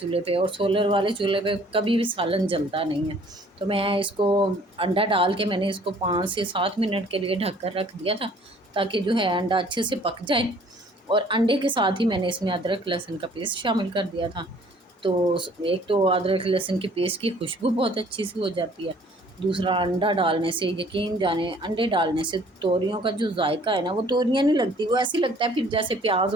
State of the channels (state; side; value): normal; both; correlation 0.56